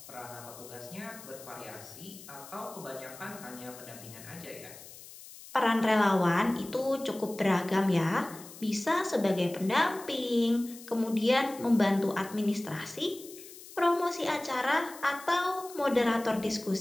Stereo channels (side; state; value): left; noise; hiss, 17 dB below the sound